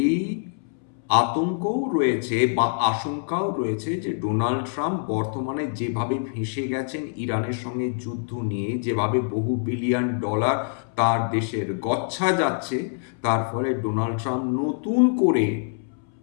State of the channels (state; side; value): silent; right; 62 dB below the other